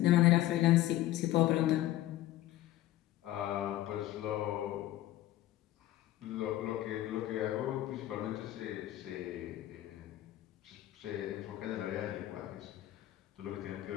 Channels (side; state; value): right; quieter; 14.7 dB